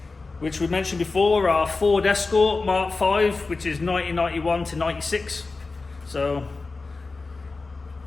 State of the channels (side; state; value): right; quieter; 3.8 dB